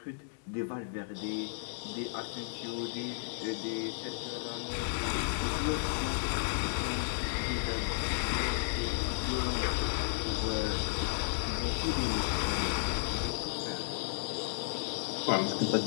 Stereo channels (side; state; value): right; silent; digital silence